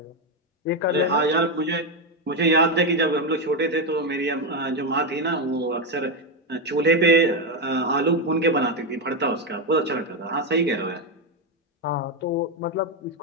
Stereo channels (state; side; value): normal; both; correlation 0.08